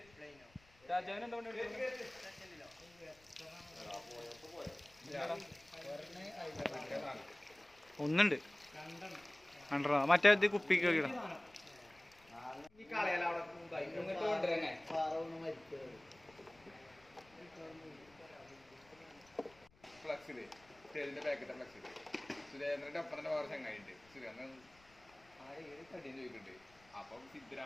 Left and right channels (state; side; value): noise; left; rumble, 28 dB below the sound